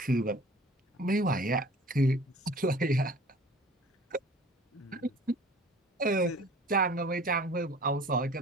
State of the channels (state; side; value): normal; both; correlation 0.47